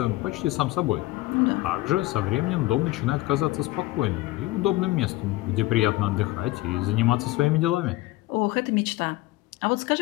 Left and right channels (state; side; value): quieter; right; 18.5 dB